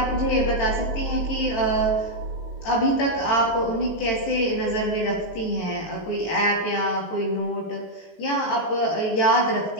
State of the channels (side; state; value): right; late; 19 ms